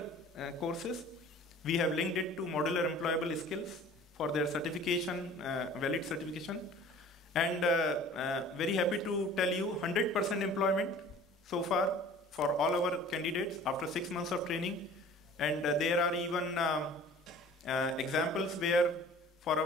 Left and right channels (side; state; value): both; normal; correlation 0.46